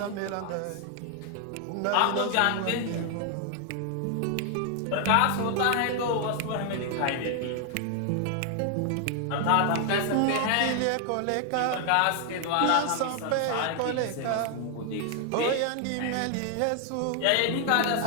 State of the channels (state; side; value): different; both; correlation 0.00